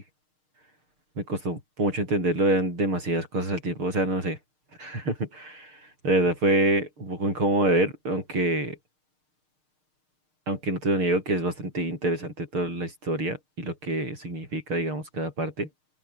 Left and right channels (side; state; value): left; late; 6.5 ms